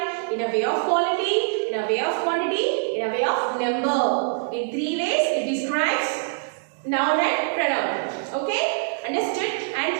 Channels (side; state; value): left; silent; digital silence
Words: In a way of quality, in a way of quantity, in a way of number. In three ways it describes noun and pronoun. Okay? Understood? And